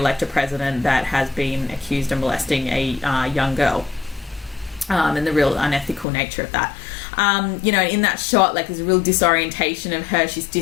a president that has been accused of molesting a young girl. And the real unethical nature of that. In that shot, like, there's a real disorientation of her. She's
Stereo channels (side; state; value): right; drops out; at 6.1 s